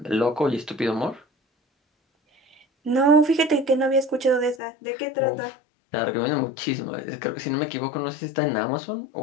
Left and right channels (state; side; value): drops out; right; at 4.5 s